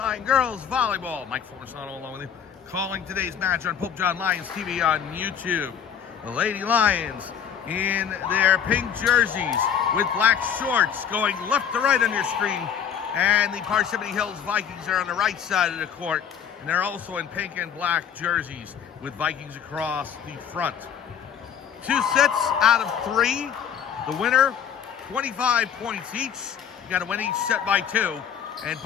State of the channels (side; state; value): right; quieter; 8.3 dB